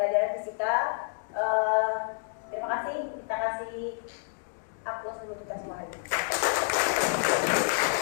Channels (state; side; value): silent; right; digital silence